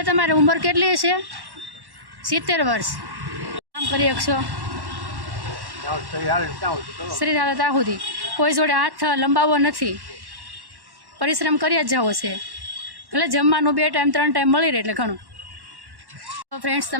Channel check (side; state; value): left; late; 1.1 ms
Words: તમારી ઉંમર કેટલી છે? 70 વર્ષ। કામ કરી શકશો? શરીર હાલે ત્યાં સુધી કોઈ જોડે હાથ લંબાવવો નથી, પરિશ્રમ કરી જ જવો છે, ભલે જમવાનું 2 ટાઈમ 3 ટાઈમ મળી રહે એટલે ઘણું। તો ફ્રેન્ડ્સ,